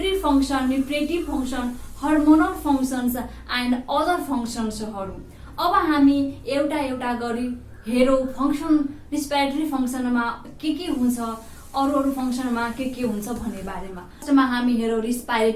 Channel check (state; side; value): identical; both; correlation 1.00